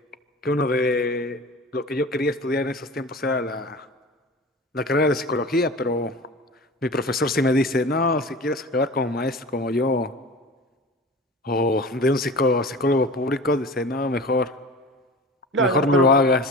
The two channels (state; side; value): normal; both; correlation 0.36